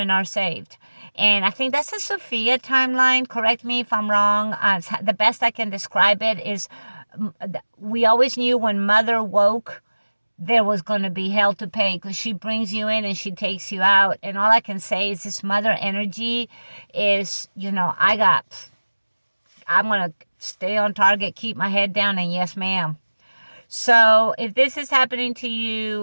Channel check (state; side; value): inverted; both; correlation -1.00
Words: are saved. And I think that's a Sophia timeline. Correct me if I'm wrong. The best I can describe it is, we always knew when mother woke, there was going to be hell to pay, because she brings you in and she takes you out. And all I can say is this mother energy is, I'm going to stay on target, keep my head down, and yes, ma'am. So if this is happening to